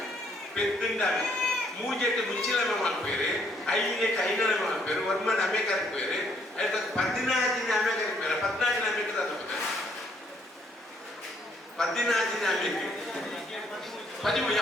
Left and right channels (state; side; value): normal; both; correlation 0.68